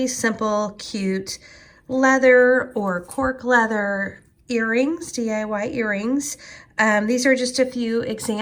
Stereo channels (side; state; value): both; identical; correlation 1.00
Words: simple, cute leather or cork leather earrings, DIY earrings. These are just a few